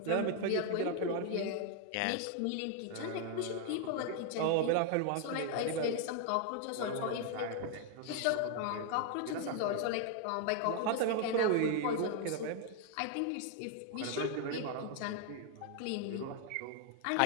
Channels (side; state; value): both; different; correlation 0.00